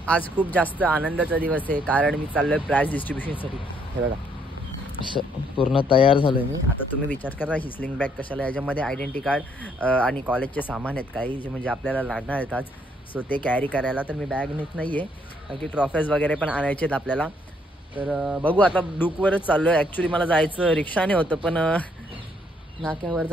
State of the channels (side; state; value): both; normal; correlation 0.69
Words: आज खूप जास्त आनंदाचा दिवस आहे कारण मी चाललोय प्राइज डिस्ट्रीब्युशनसाठी. हे बघा असं पूर्ण तयार झालोय मी. आता तुम्ही विचार करा ही स्लिंग बॅग कशाला, याच्यामध्ये आयडेंटिटी कार्ड आणि कॉलेजचे सामान आहेत काही जे म्हणजे आपल्याला लागणार आहेत आज. सो ते कॅरी करायला तर मी बॅग नेत नाही आहे कारण की ट्रॉफीज वगैरे पण आणायचे आहेत आपल्याला. तर बघू आता डुकवरच चाललो आहे. ॲक्च्युली मला जायचं रिक्षाने होतं पण नाक्यावर